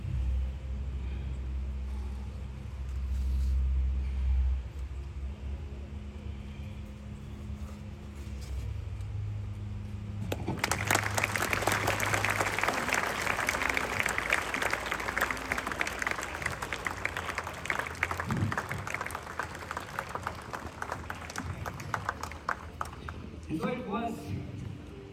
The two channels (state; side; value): identical; both; correlation 1.00